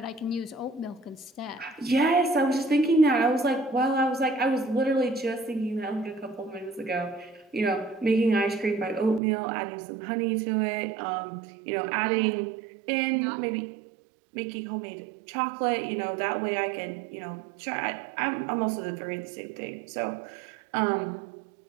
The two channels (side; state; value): left; drops out; at 9.2 s